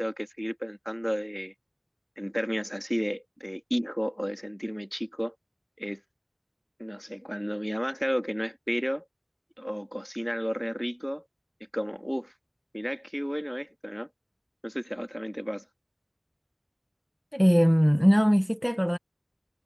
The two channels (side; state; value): both; identical; correlation 1.00